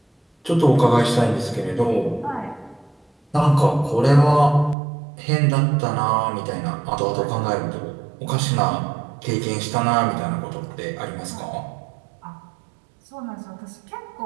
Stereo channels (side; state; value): left; drops out; at 4.8 s